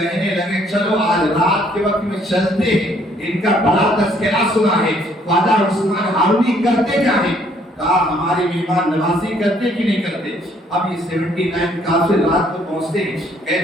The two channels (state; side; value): normal; both; correlation 0.64